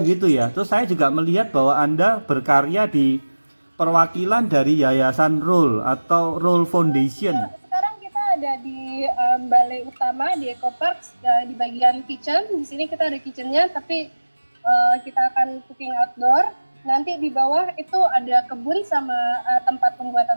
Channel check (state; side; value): inverted; both; correlation -1.00